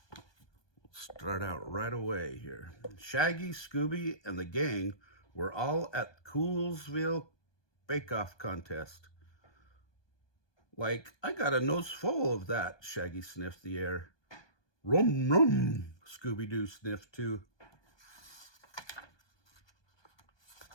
Start out right away here. Shaggy, Scooby, and the gang were all at Coolsville Bake-Off contest. Like, I got a nose full of that, Shaggy sniffed the air. Rum, rum, Scooby-Doo sniffed too.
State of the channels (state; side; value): late; right; 1.2 ms